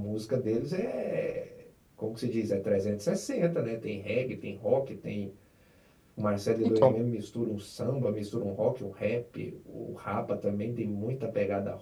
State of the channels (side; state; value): both; identical; correlation 1.00